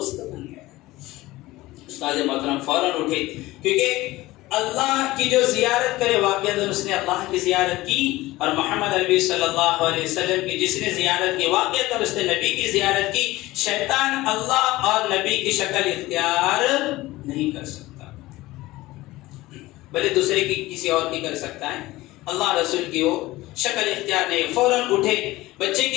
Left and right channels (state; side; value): quieter; right; 18.5 dB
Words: بن گیا. استاد محترم فوراً اٹھے، کیونکہ اللہ کی جو زیارت کرے واقعہ اس نے اللہ کی زیارت کی، اور محمد عربی صلی اللہ علیہ وسلم کی جس نے زیارت کی واقعہ اس نے نبی کی زیارت کی. شیطان اللہ اور نبی کی شکل اختیار نہیں کر سکتا، بلکہ دوسرے کی کسی اور کی کر سکتا ہے، اللہ رسول کی وہ شکل اختیار نہیں. فوراً اٹھے، بچے